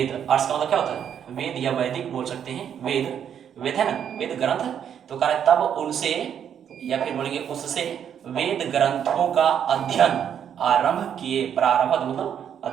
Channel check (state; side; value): quieter; left; 8.8 dB